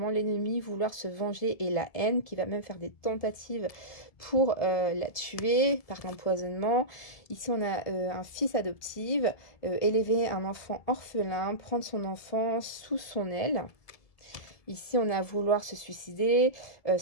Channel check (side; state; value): right; late; 1.7 ms